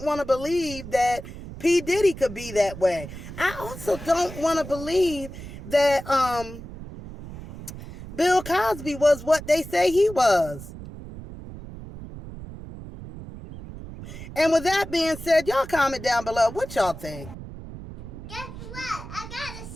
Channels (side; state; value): right; noise; rumble, 12 dB below the sound